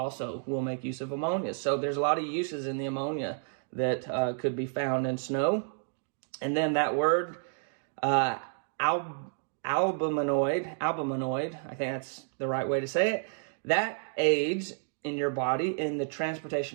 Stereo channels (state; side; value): silent; left; digital silence